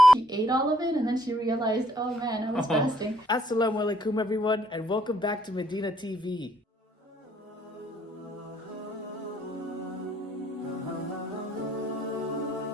She ate all of it and then she realized, oh man, I was fasting. Assalamu alaikum everyone, and welcome back to Medina TV.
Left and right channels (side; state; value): both; normal; correlation 0.67